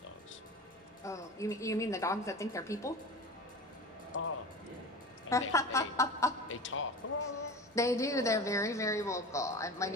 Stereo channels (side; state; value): both; normal; correlation 0.33